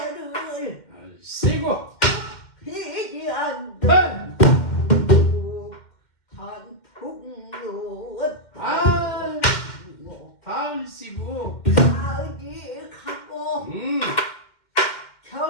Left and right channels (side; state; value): right; late; 2.1 ms